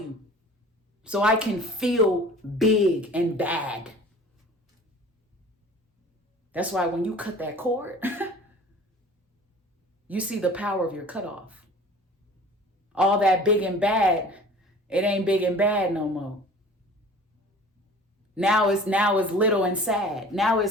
so I can feel big and bad. That's why when you cut that cord, you see the power of your cutoff. All that big and bad, it ain't big and bad no more. Now it's little and sad. Now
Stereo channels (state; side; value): normal; both; correlation 0.45